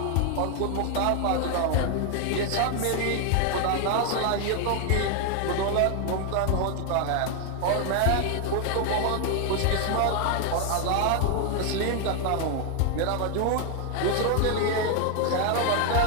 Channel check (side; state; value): both; different; correlation 0.00